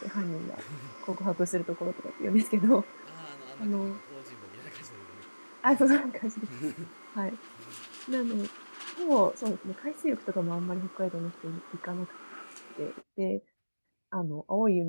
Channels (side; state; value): both; inverted; correlation -1.00